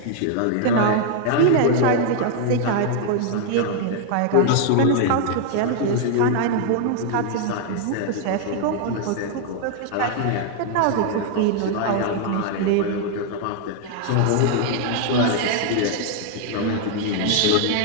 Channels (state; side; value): different; both; correlation 0.00